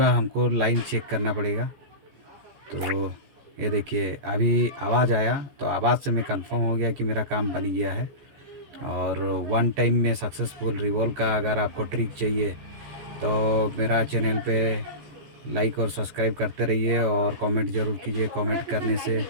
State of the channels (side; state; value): left; late; 14 ms